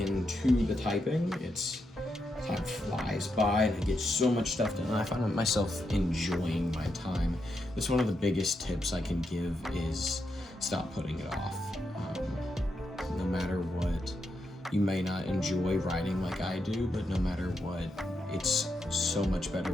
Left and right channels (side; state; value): both; normal; correlation 0.84